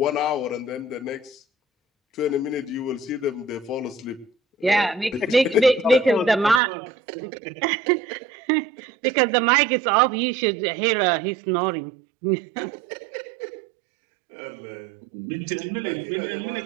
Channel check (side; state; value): left; drops out; at 6.6 s